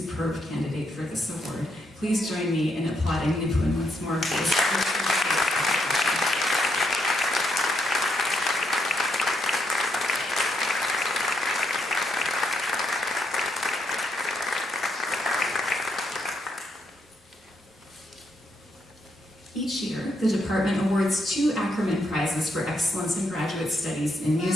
candidate for this award. Please join me in applauding Nipun once more for this. Each year, the department awards 2 Ackerman Prizes for excellence in graduate studies in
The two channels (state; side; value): normal; both; correlation 0.78